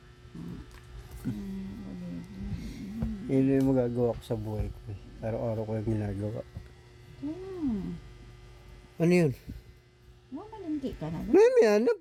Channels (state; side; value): identical; both; correlation 1.00